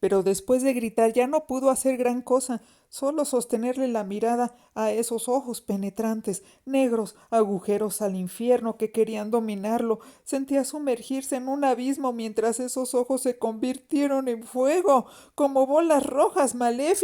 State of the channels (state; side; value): identical; both; correlation 1.00